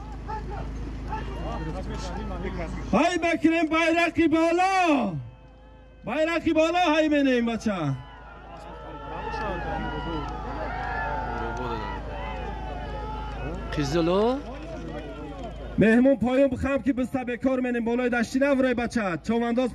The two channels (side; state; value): both; identical; correlation 1.00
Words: های بکریم بایرقی بالا بایرقی بالا های بینیم بچه قیزلو مهمون پایون بخم که بسته بکار منیم بالای دشتی نورای بچه